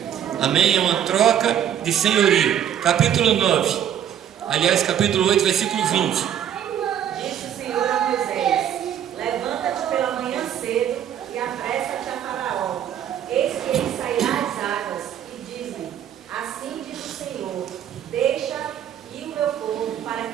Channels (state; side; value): quieter; left; 9.8 dB